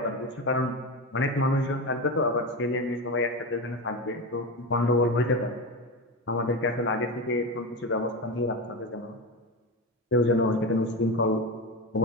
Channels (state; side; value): normal; both; correlation 0.19